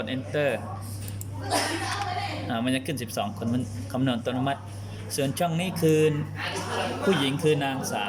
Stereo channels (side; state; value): both; identical; correlation 1.00